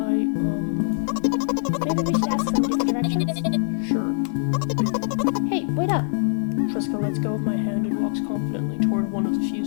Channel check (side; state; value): right; silent; digital silence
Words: Maybe we should ask somebody for directions? Sure. Hey, wait up. Treska lets go of my hand and walks confidently toward one of the few